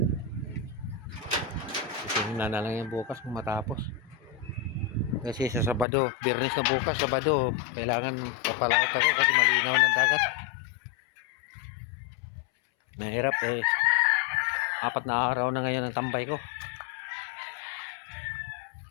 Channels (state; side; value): drops out; right; at 5.9 s